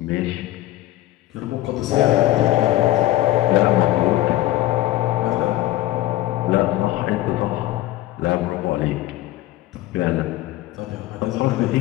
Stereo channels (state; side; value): quieter; right; 15.7 dB